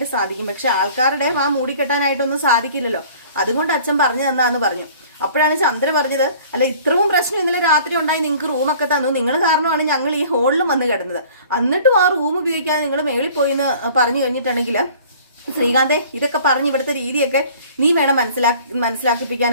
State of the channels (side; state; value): both; inverted; correlation -0.49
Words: സാധിക്കും, പക്ഷെ ആൾക്കാരുടെ വാ മൂടിക്കെട്ടാനായിട്ടൊന്നും സാധിക്കില്ലല്ലോ. അതുകൊണ്ട് അച്ഛൻ പറഞ്ഞു തന്നാന്ന് പറഞ്ഞു. അപ്പോഴാണ് ചന്ദ്ര പറഞ്ഞത്, അല്ല ഇത്രയും പ്രശ്നം ഇന്നലെ രാത്രി ഉണ്ടായി, നിങ്ങൾക്ക് റൂമൊക്കെ തന്നു, നിങ്ങൾ കാരണമാണ് ഞങ്ങൾ ഈ ഹോളിലും വന്ന് കിടന്നത്, എന്നിട്ടും ആ റൂം ഉപയോഗിക്കാതെ നിങ്ങൾ മേളിൽ പോയി എന്ന് പറഞ്ഞു കഴിഞ്ഞിട്ടുണ്ടെങ്കിൽ ശ്രീകാന്തേ, ഇതൊക്കെ പറഞ്ഞ് ഇവിടുത്തെ രീതിയൊക്കെ നീ വേണം